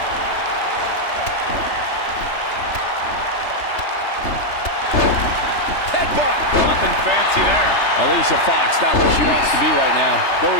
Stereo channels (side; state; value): right; late; 3.3 ms